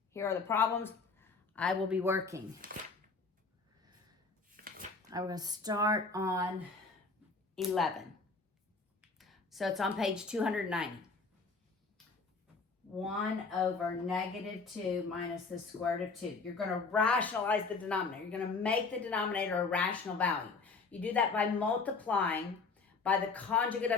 Here are the problems I will be working. I'm going to start on 11. So it's on page 290. 1 over negative 2 minus the square root of 2. You're going to rationalize the denominator. You're going to make the denominator a rational value. You do that by multiplying by the conjugate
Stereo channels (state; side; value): quieter; right; 4.3 dB